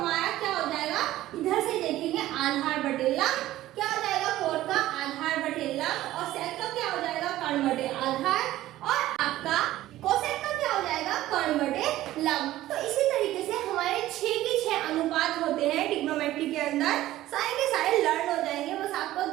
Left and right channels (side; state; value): left; quieter; 15.0 dB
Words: क्या हो जाएगा, इधर से देखेंगे आधार बटे लंब। क्या हो जाएगा, कोट का आधार बटे लंब, और सेक का क्या हो जाएगा, कर्ण बटे आधार, और आपका कोसेक का क्या हो जाएगा, कर्ण बटे लंब। तो इसी तरीके से हमारे 6 के 6 अनुपात होते हैं ट्रिग्नोमेट्री के अंदर, सारे के सारे लर्न हो जाएंगे। बस आपको